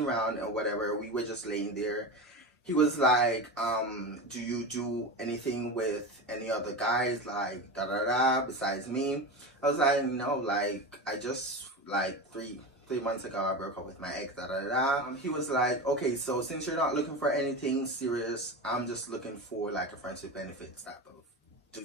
round and whatever, we were just laying there. He was like, do you do anything with any other guys, like besides me? I was like, no, like I just like three months ago I broke up with my ex, He was like, okay, so since you're not looking for anything serious, I'm just looking for like a friendship benefits type of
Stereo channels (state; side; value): normal; both; correlation 0.24